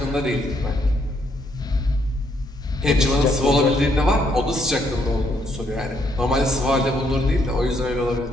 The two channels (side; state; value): both; normal; correlation 0.72